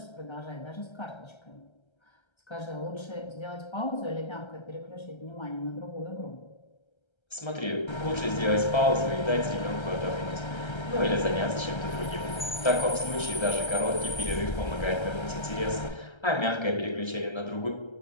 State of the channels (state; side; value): late; right; 1.3 ms